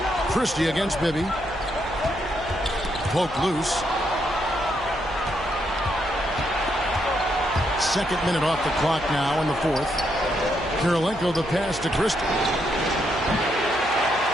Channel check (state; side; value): noise; right; hum, 15 dB below the sound